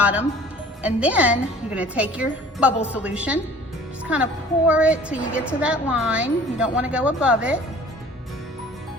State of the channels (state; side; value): normal; both; correlation 0.49